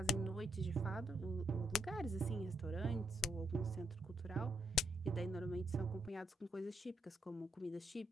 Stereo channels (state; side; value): normal; both; correlation 0.78